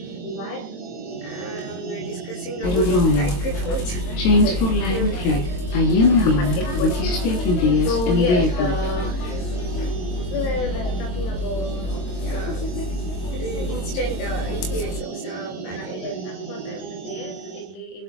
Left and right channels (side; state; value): right; late; 22 ms